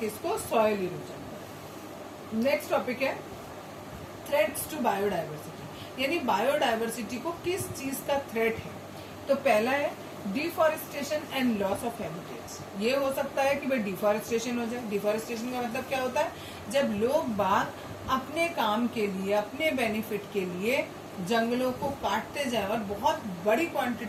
सॉइल इरोजन। नेक्स्ट टॉपिक है थ्रेट्स टू बायोडाइवर्सिटी, यानी बायोडाइवर्सिटी को किस चीज का थ्रेट है। तो पहला है deforestation and loss of habitats. ये हो सकता है कि भाई डिफॉरेस्टेशन हो जाए। डिफॉरेस्टेशन का मतलब क्या होता है, जब लोग बाग अपने काम के लिए, अपने बेनिफिट के लिए जंगलों को काटते जाए और बहुत बड़ी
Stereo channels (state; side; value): identical; both; correlation 1.00